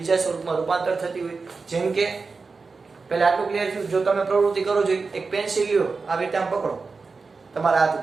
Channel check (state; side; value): quieter; left; 4.4 dB